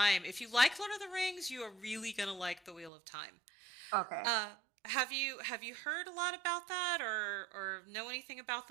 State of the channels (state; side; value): drops out; left; at 2.9 s